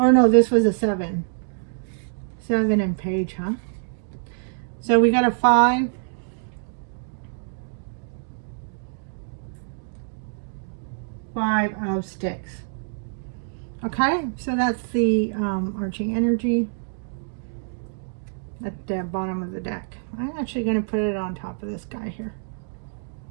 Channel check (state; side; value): silent; left; digital silence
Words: no, this was a 7. 7 in page, huh? So we got a 5. 5 of sticks. Okay, so that's the arching energy at the bottom of the deck. I'm actually going to put it on top of this guy here.